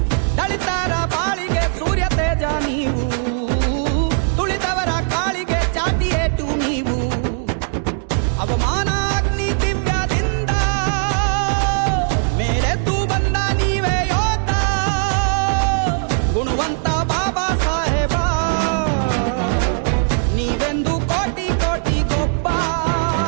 ದಳಿತರ ಬಾಳಿಗೆ ಸೂರ್ಯ ತೇಜ ನೀವು, ತುಳಿದವರ ಕಾಳಿಗೆ ಚಾಟಿ ಏಟು ನೀವು, ಅವಮಾನ ಅಗ್ನಿ ದಿವ್ಯದಿಂದ ಮೇರೆದ್ದು ಬಂದ ನೀವೇ ಯೋಧ, ಗುಣವಂತ ಬಾಬಾ ಸಾಹೇಬ ನೀವೆಂದು ಕೋಟಿ ಕೋಟಿ ಗೊಬ್ಬ,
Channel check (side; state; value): left; silent; 66 dB below the other